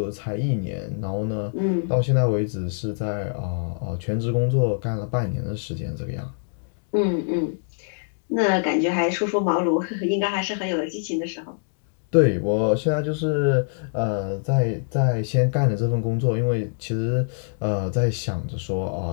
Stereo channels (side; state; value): right; silent; digital silence